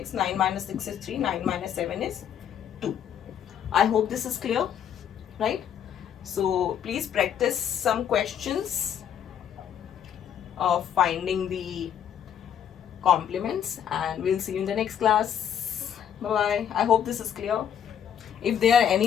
9 minus 6 is 3, 9 minus 7 is 2. I hope this is clear, right? So please practice some questions of finding the complements, and we'll see you in the next class. Bye bye. I hope this is clear. If there are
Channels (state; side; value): quieter; right; 9.2 dB